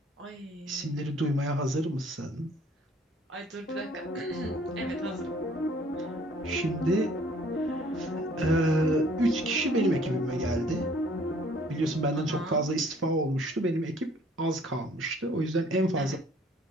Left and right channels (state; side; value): normal; both; correlation 0.57